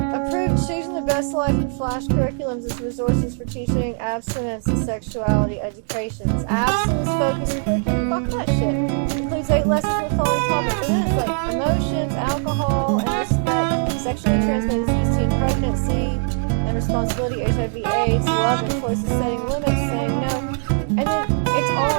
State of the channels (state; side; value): silent; left; 60 dB below the other